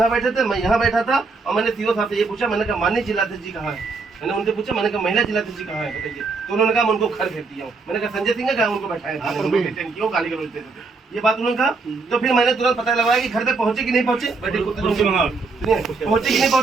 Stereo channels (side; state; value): left; quieter; 4.2 dB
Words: बैठे थे, मैं यहाँ बैठा था, और मैंने सीओ साहब से ये पूछा, मैंने कहा माननीय जिलाध्यक्ष जी कहाँ है? मैंने उनसे पूछा, मैंने कहा महिला जिलाध्यक्ष जी कहाँ है बताइए? तो उन्होंने कहा मैं उनको घर भेज दिया हूँ। मैंने कहा संजय सिंह का उनको बैठाया, गाली गलौज देते थे, ये बात उन्होंने कहा। तो फिर मैंने तुरंत पता लगाया कि घर पे पहुंचे कि नहीं पहुंचे, पहुंचे कि नहीं